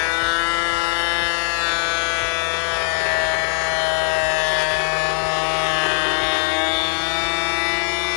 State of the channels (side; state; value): right; silent; digital silence